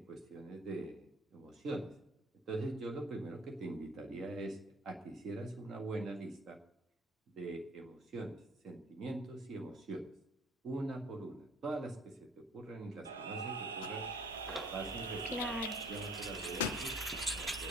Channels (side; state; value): both; normal; correlation 0.54